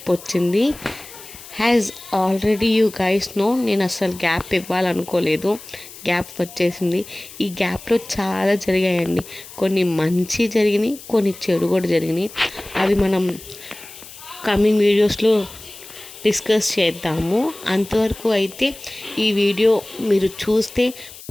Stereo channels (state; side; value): noise; left; hiss, 17 dB below the sound